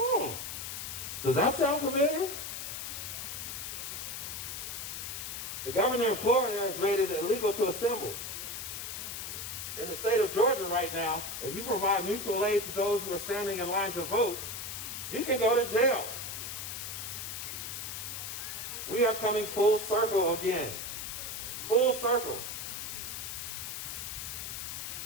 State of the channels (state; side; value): noise; left; hiss, 6 dB below the sound